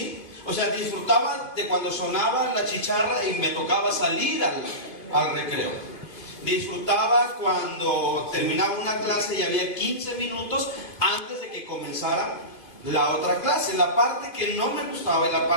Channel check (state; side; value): late; right; 2.6 ms